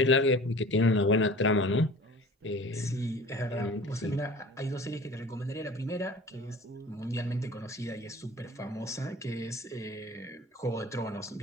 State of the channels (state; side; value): normal; both; correlation 0.43